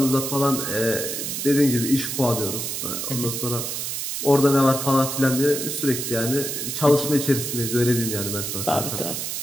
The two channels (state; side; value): noise; right; hiss, 4 dB below the sound